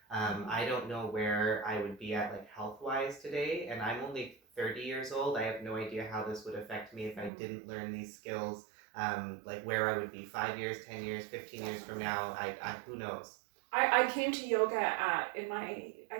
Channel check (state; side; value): drops out; left; at 7.3 s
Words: I don't know where I would be at like health wise today. And I'm only 30 years old. I have no idea how this would affect me if I didn't learn these skills, like where I would be 5 years, 10 years, 15 years from now. I who knows? I came to yoga in my,